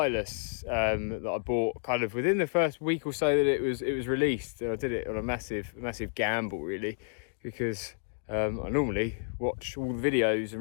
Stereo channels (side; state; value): right; silent; digital silence